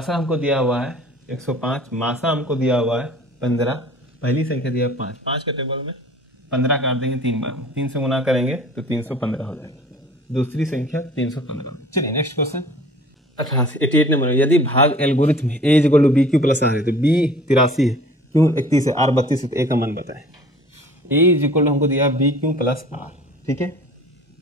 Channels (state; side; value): normal; both; correlation 0.47